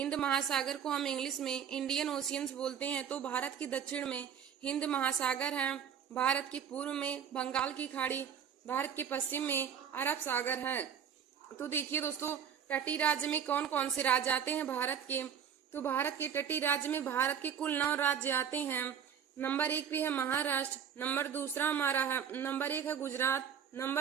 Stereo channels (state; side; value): quieter; left; 8.1 dB